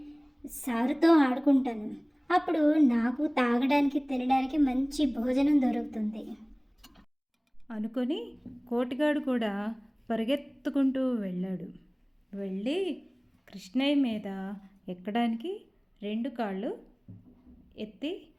సారుతో ఆడుకుంటాను. అప్పుడు నాకు తాగడానికి తినడానికి మంచి భోజనం దొరుకుతుంది అనుకొని కోటిగాడు కూడా పరిగెత్తుకుంటూ వెళ్ళాడు. వెళ్ళి కృష్ణయ్య మీద ఎక్కడానికి 2 కాళ్ళు ఎత్తి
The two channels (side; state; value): both; identical; correlation 1.00